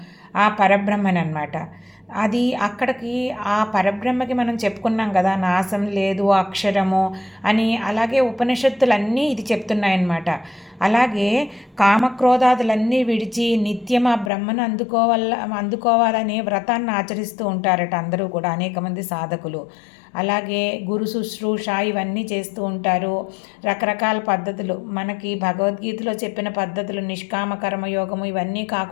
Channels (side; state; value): right; drops out; at 14.3 s